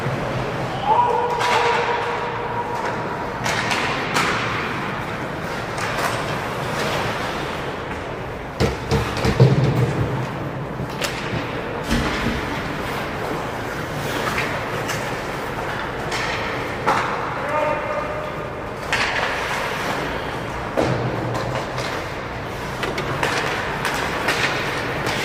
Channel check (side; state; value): both; identical; correlation 1.00